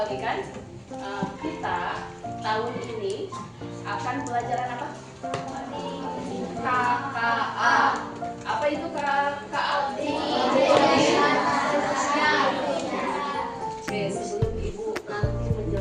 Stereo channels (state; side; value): identical; both; correlation 1.00